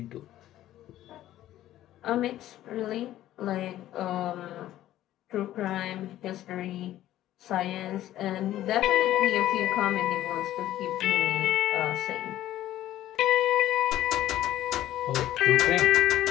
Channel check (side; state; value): right; quieter; 13.5 dB